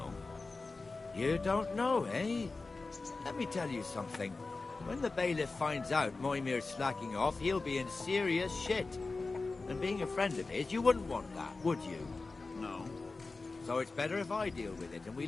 You don't know, eh? Let me tell you something. When the bailiff finds out Moimir's slacking off, he'll be in serious shit. And being a friend of his, you wouldn't want that, would you? No. So it's better if I deal with it and we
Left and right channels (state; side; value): quieter; right; 3.7 dB